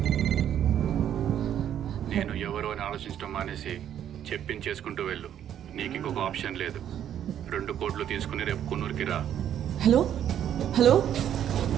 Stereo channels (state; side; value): quieter; left; 10.2 dB